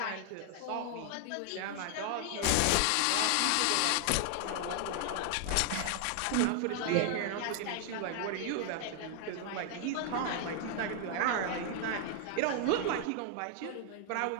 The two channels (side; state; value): both; different; correlation 0.00